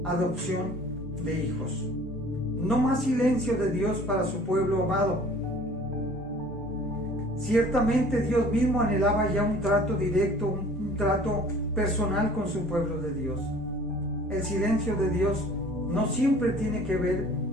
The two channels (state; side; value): normal; both; correlation 0.49